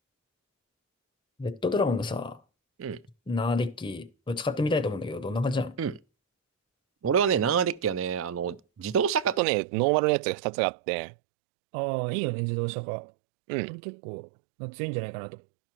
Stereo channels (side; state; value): left; drops out; at 9.4 s